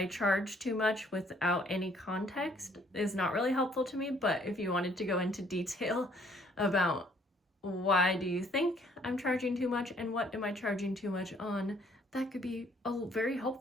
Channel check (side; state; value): both; normal; correlation 0.63